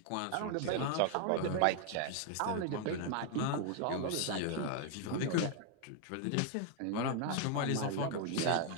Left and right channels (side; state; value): both; different; correlation 0.00